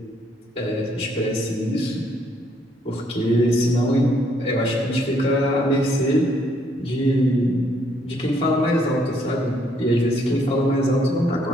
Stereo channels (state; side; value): normal; both; correlation 0.69